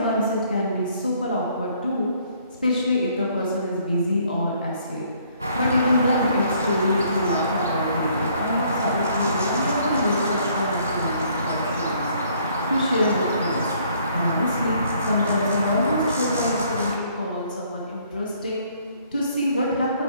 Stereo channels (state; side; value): inverted; both; correlation -0.63